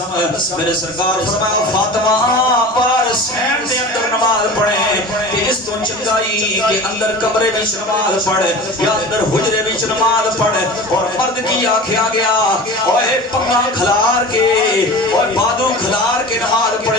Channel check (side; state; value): both; normal; correlation 0.36